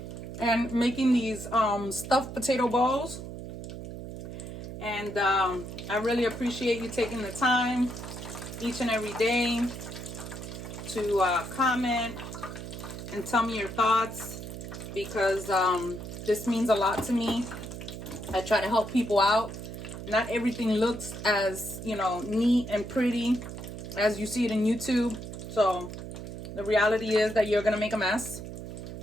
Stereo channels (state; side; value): noise; right; hum, 9 dB below the sound